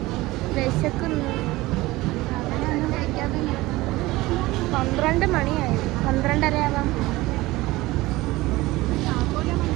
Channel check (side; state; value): left; quieter; 19.3 dB